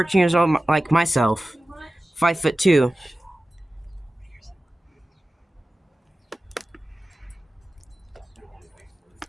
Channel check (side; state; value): both; normal; correlation 0.96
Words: years old like myself, 5'2".